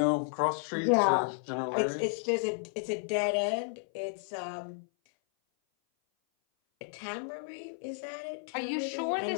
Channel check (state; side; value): silent; right; 56 dB below the other